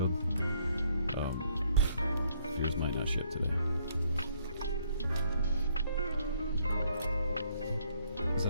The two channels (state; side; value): inverted; both; correlation -0.67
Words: yours might not ship today. Because